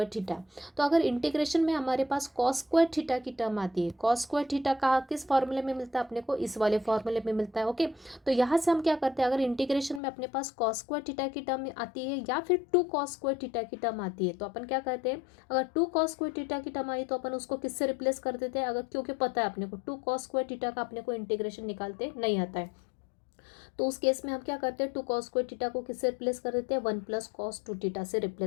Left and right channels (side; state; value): right; drops out; at 10.0 s